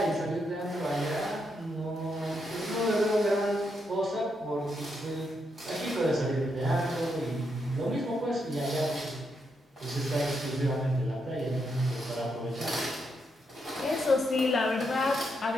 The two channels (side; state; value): both; normal; correlation 0.80